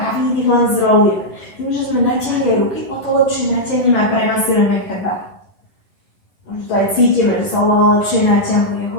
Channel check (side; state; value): right; late; 11 ms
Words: a výdych len zrolujeme. Tým, že sme natiahli aj ruky, o to lepšie natiahneme a premasírujeme chrbát. Možno to aj cítime, že sa oveľa lepšie natiahuje.